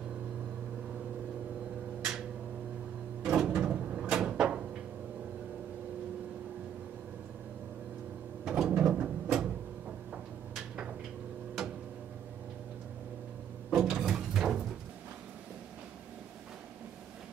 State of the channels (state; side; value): quieter; left; 9.4 dB